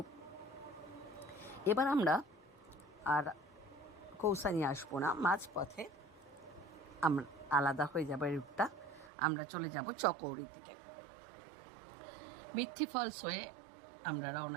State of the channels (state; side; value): drops out; left; at 9.1 s